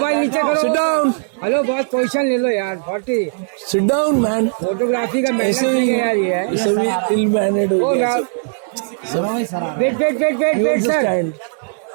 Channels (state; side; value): silent; left; 67 dB below the other